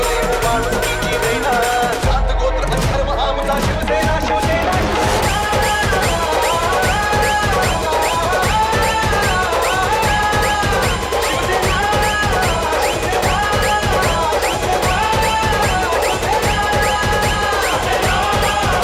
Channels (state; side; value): identical; both; correlation 1.00